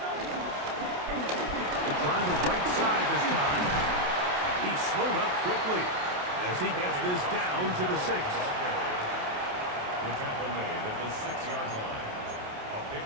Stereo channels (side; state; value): left; late; 28 ms